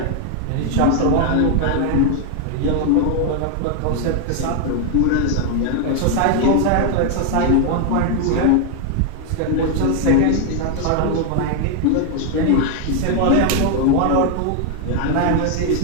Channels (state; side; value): different; both; correlation 0.00